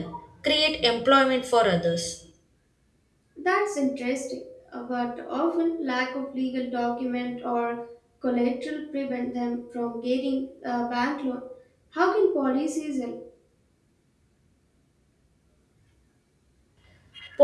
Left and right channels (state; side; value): identical; both; correlation 1.00